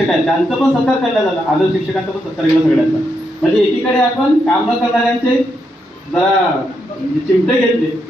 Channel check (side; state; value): both; normal; correlation 0.81